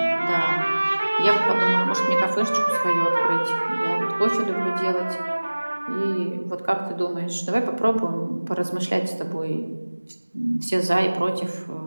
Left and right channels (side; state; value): both; inverted; correlation -1.00